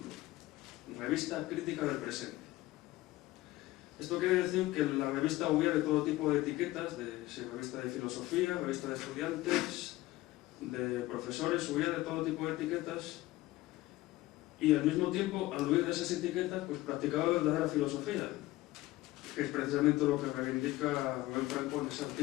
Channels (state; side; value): quieter; right; 17.6 dB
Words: Revista Crítica del Presente. Esto quiere decir que la revista huía de todo tipo de etiquetas, de revista de filosofía, revista de estudiantes, de profesores, huía de todo tipo de etiquetas, y al mismo tiempo, al huir de esas etiquetas, pues practicaba verdadera filosofía, que es precisamente lo que reivindica Rubén Franco en ese